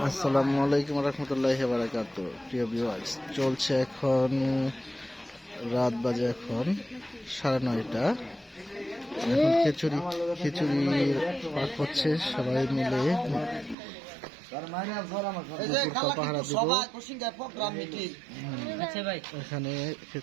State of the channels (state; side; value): drops out; left; at 13.8 s